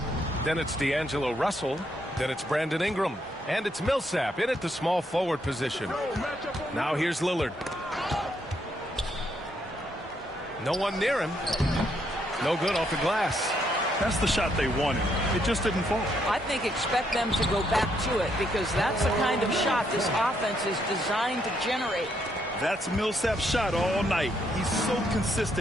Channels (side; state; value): both; normal; correlation 0.74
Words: Then it's D'Angelo Russell. Then it's Brandon Ingram. And it's Millsap in at the small forward position. Now here's Lillard. No one near him. No good off the glass. That's the shot they wanted. It just didn't fall. I think expect them to go back to it because that's the kind of shot this offense is designed to generate. That's Millsap's shot all night. He's so